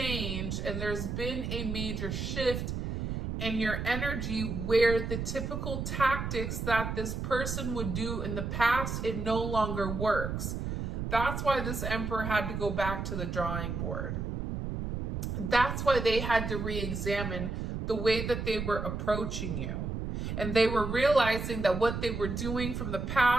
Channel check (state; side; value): noise; right; rumble, 3 dB below the sound